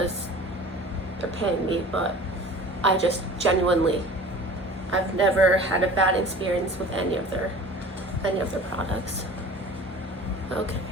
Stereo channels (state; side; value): normal; both; correlation 0.42